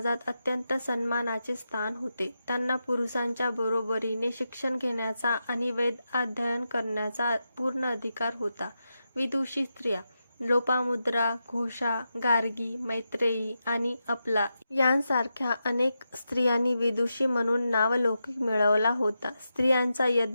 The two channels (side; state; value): both; inverted; correlation -0.88